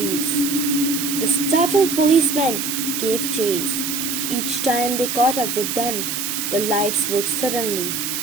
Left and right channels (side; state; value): right; noise; hiss, 2 dB below the sound